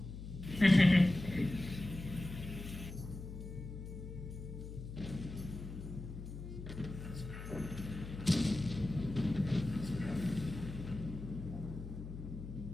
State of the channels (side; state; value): left; noise; hum, 9 dB below the sound